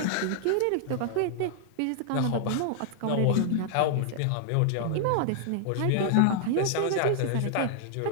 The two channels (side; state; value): both; different; correlation 0.00